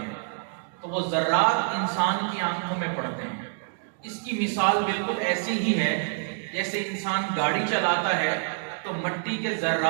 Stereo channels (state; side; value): silent; left; digital silence